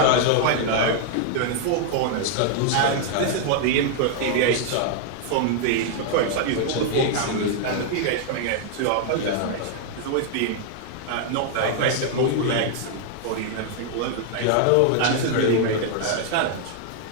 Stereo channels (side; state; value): both; different; correlation 0.00